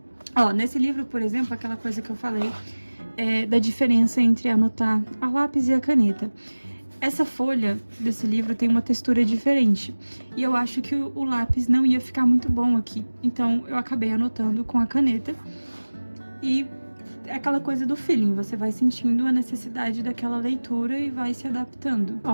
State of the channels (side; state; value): both; inverted; correlation -1.00